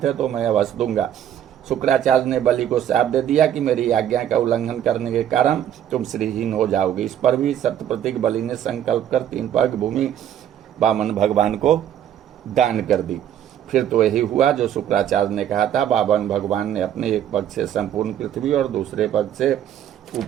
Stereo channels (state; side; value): quieter; left; 10.4 dB